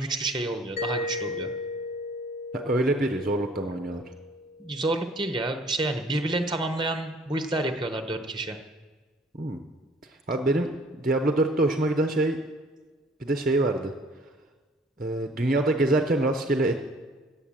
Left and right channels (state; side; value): normal; both; correlation 0.55